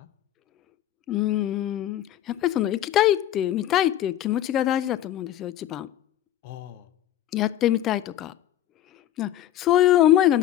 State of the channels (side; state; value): right; quieter; 12.4 dB